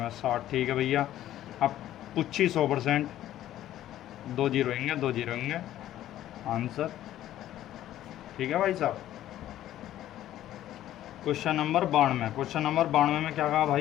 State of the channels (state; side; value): quieter; right; 12.9 dB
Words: 60। ठीक है भैया। अब पूछी 100%, 2 जीरो होंगे, 2 जीरो होंगे आंसर। ठीक है भाई साहब। क्वेश्चन नंबर 92, क्वेश्चन नंबर 92 में क्या कहा